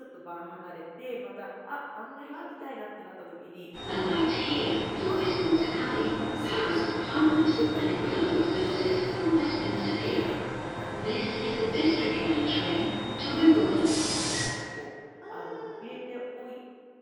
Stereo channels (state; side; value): identical; both; correlation 1.00